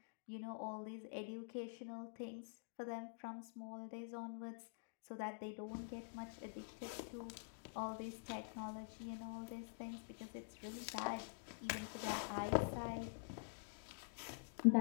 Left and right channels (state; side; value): silent; right; digital silence